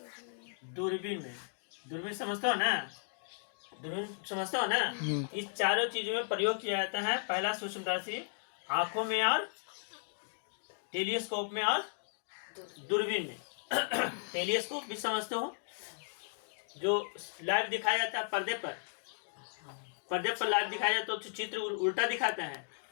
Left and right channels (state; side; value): silent; right; digital silence